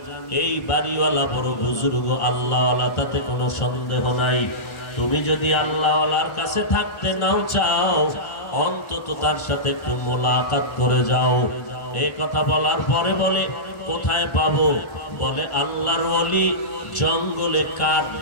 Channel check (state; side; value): late; right; 1.2 ms